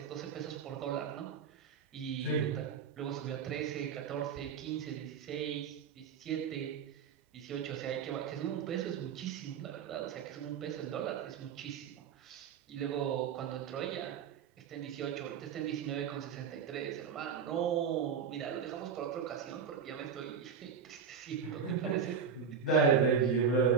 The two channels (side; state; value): left; quieter; 6.8 dB